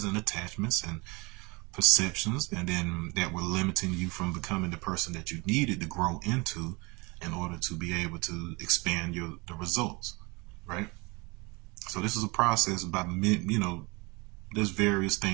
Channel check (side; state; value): left; quieter; 26.8 dB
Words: and attachments and perceptions, and then that were limiting you from becoming the person that you needed to grow into in order to be able to expand the results, right? So this is a process by there's various